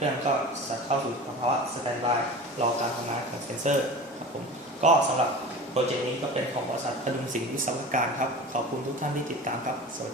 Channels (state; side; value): normal; both; correlation 0.35